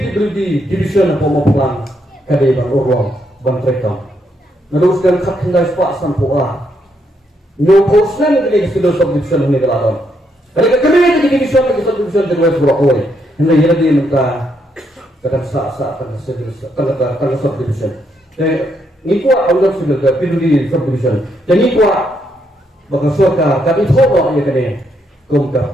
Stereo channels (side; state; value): both; normal; correlation 0.77